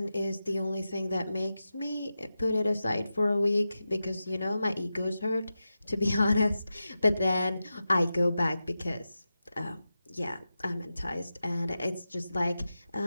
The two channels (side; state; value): both; inverted; correlation -0.92